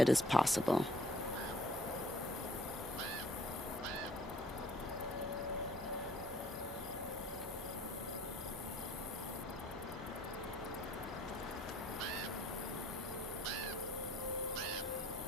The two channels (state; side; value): normal; both; correlation 0.57